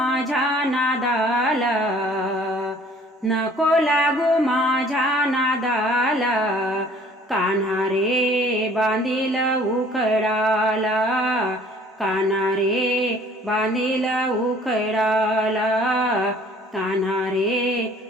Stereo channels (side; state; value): both; normal; correlation 0.54